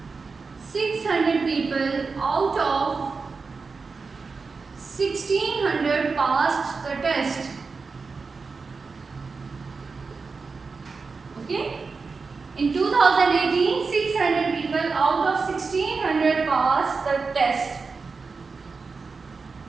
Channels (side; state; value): left; quieter; 4.6 dB